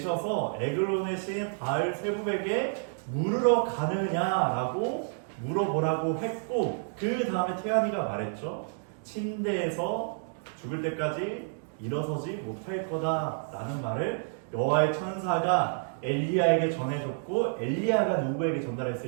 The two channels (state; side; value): silent; left; digital silence